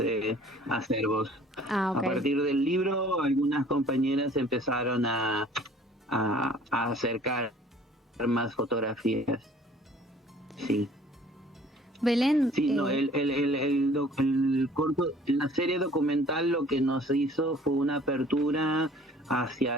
acervos. Okay. A partir del libro, algunas compañeras empezaron a acercar más fotografías. Sí. Belén. Sí, no, el corto, la serie documental lo que nos hizo fue una apertura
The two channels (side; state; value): both; normal; correlation 0.52